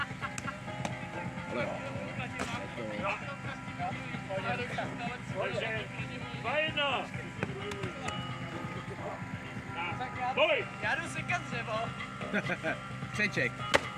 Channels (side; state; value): both; identical; correlation 1.00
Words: Ale jo. Takže 2-1. Boj! Já jdu sekat dřevo. Křeček.